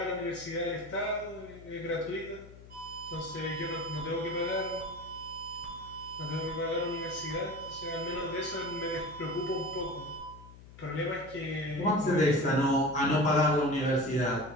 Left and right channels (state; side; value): noise; left; hum, 18 dB below the sound